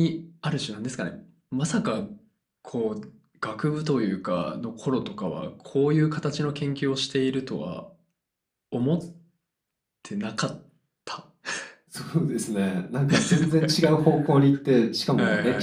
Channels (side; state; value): both; identical; correlation 1.00